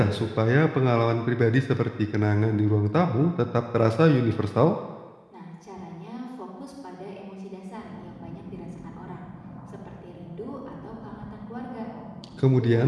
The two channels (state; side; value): identical; both; correlation 1.00